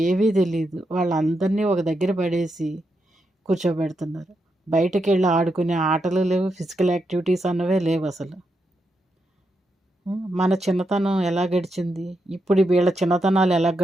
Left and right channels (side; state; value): both; normal; correlation 0.84